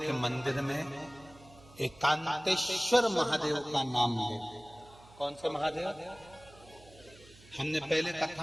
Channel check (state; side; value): noise; right; hum, 23 dB below the sound